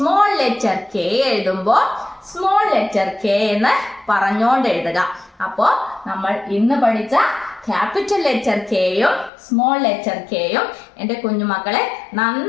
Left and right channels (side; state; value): right; drops out; at 9.3 s